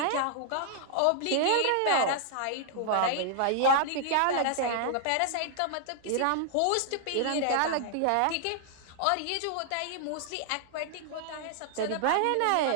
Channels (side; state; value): both; different; correlation -0.01